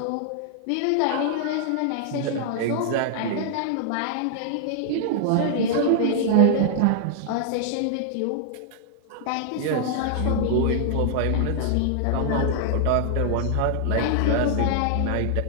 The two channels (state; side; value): different; both; correlation -0.01